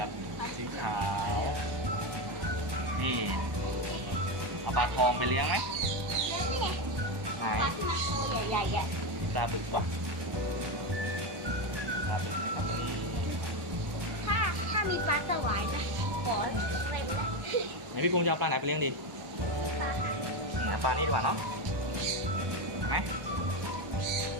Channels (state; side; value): late; left; 1.2 ms